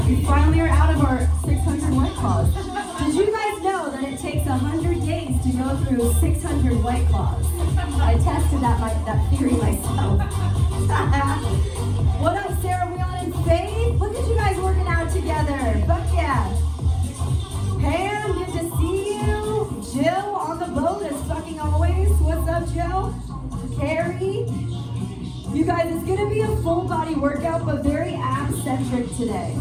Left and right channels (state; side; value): identical; both; correlation 1.00